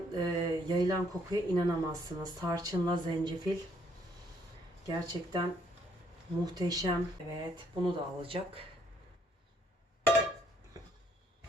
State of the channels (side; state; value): both; normal; correlation 0.68